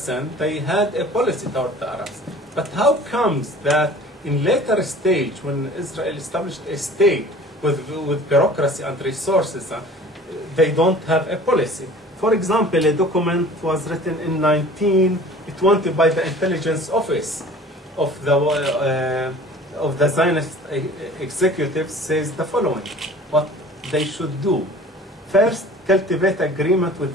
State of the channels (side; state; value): both; normal; correlation 0.45